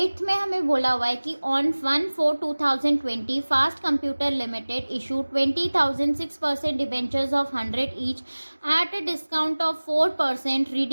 में हमें बोला हुआ है कि on 1/4/2020 fast computer limited issue 20,006% debentures of 100 each at a discount of 4%,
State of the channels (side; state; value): both; inverted; correlation -1.00